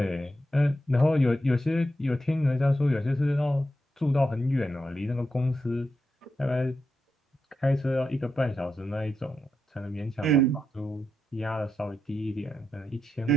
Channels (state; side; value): normal; both; correlation 0.85